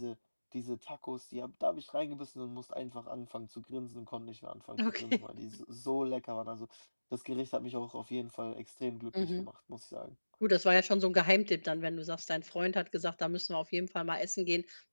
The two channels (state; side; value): inverted; both; correlation -1.00